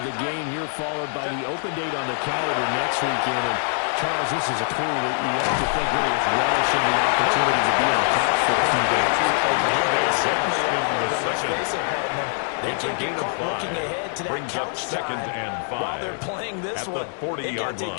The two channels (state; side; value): silent; right; 57 dB below the other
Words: the game here followed by the open date on the calendar next weekend. And Charles, this is a crew that you have to think really is relishing the opportunity to be in the catch for a few days. Certainly in the second. They can't get caught looking ahead to that Brings up couch second time and 5. while they're playing this at one. the 40-yard they got to take